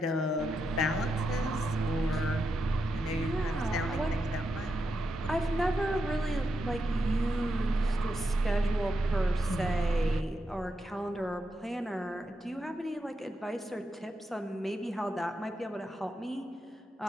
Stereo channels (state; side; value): normal; both; correlation 0.85